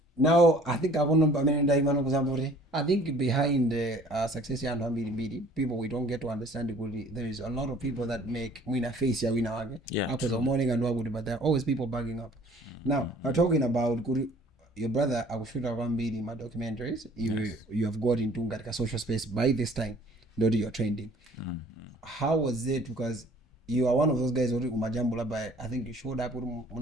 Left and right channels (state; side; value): normal; both; correlation 0.53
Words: Now I think I want to I think behind the success and people we don't get to understand it. There is a lot of people that make win face ya win. Yeah. Because morning and what, but there are always people backing up. Now I'm talking about your brother. I will shoot around my documentaries. You have got into a social space by this time. Not your trending. How was it? Because you are one of those guys who umajambula by, I think you showed up with